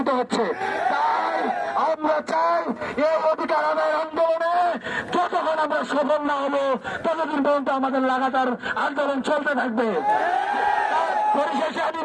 হচ্ছে। তাই আমরা চাই এই অধিকার আদায়ের আন্দোলনে যতক্ষণ আমরা সফল না হবো ততদিন পর্যন্ত আমাদের লাগাতার আন্দোলন চলতে থাকবে। পরিশেষে আমি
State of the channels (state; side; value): identical; both; correlation 1.00